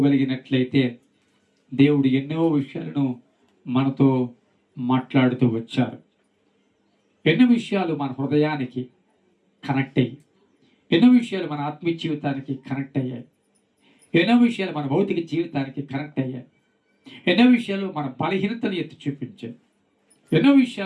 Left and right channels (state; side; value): identical; both; correlation 1.00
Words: దేవుడు ఎన్నో విషయాలను మనతో మాట్లాడుతూ వచ్చారు. ఎన్నో విషయాలు మన హృదయానికి కనెక్ట్ అయ్యి, ఎన్నో విషయాలు మన ఆత్మీయ జీవితానికి కనెక్ట్ అయ్యాయి, ఎన్నో విషయాలు మన భౌతిక జీవితానికి కనెక్ట్ అయ్యాయి, ఎన్నో విషయాలు మన బలహీనతను ఎత్తి చూపించాయి, ఎన్నో